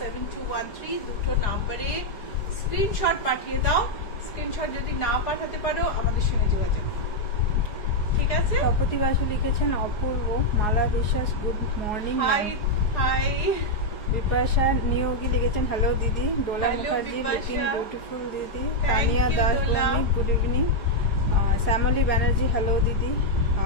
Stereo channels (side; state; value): right; late; 4.9 ms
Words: দুটো নাম্বারে স্ক্রিনশট পাঠিয়ে দাও। স্ক্রিনশট যদি না পাঠাতে পারো আমাদের সঙ্গে যোগাযোগ, ঠিক আছে? তপতি বাসু লিখেছেন অপূর্ব। Mala Biswas good morning. Hi hi. Bipasha Niyogi লিখেছেন হ্যালো দিদি। Dola Hello, Mukherjee Bipasha. Looking beautiful দিদি। Thank Tania you, Das Dola. Bhowmik good evening. Shyamali Banerjee hello দিদি।